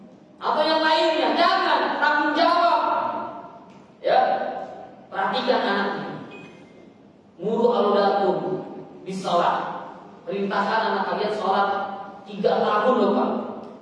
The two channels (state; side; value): identical; both; correlation 1.00